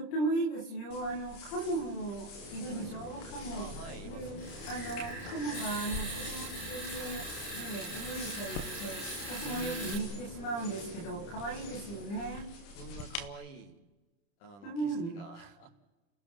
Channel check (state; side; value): late; right; 30 ms